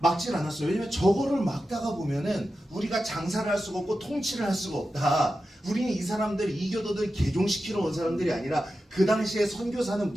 않았어요. 왜냐면 저거를 막다가 보면은 우리가 장사를 할 수가 없고 통치를 할 수가 없다. 우리는 이 사람들 이교도들 개종시키러 온 사람들이 아니라 그 당시에 선교사는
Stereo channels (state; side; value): normal; both; correlation 0.91